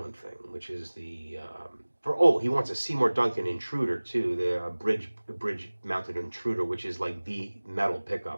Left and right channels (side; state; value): both; inverted; correlation -1.00